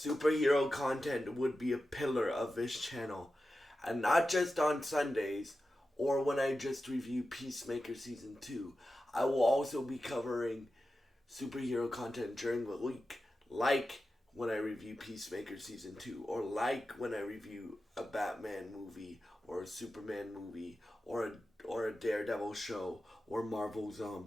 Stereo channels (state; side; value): normal; both; correlation 0.92